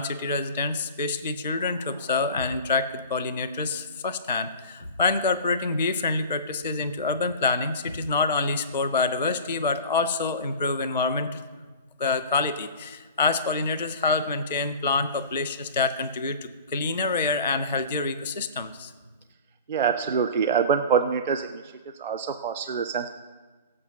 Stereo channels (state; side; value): inverted; both; correlation -0.37